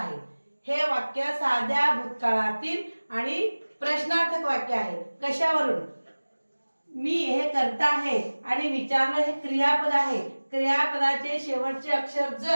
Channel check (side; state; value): both; inverted; correlation -1.00